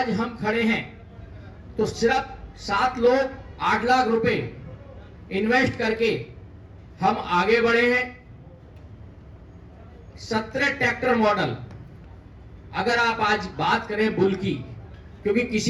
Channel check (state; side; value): identical; both; correlation 1.00